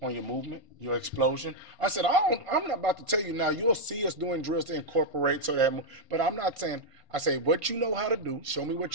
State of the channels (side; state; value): left; late; 1.5 ms